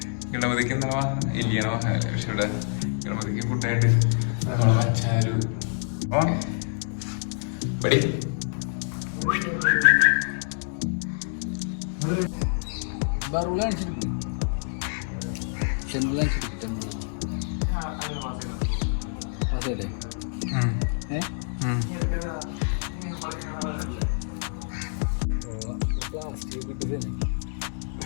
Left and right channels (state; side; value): silent; right; 60 dB below the other